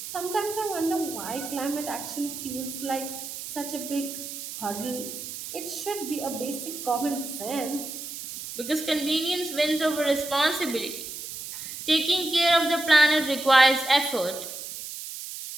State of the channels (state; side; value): noise; right; hiss, 9 dB below the sound